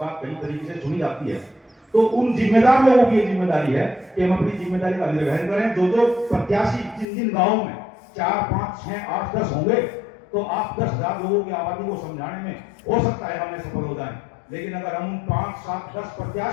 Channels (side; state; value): right; drops out; at 7.1 s